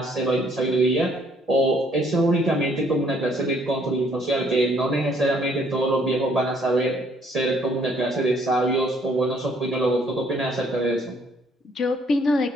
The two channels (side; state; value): both; normal; correlation 0.64